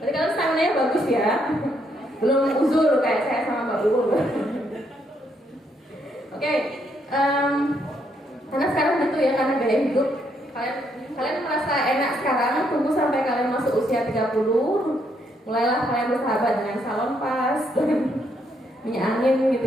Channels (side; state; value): both; normal; correlation 0.74